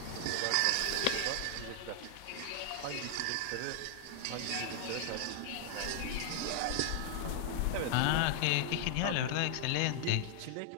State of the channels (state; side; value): different; both; correlation 0.00